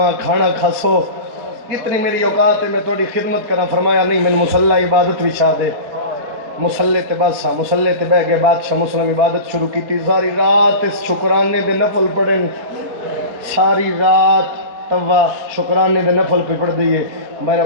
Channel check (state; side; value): late; left; 4.4 ms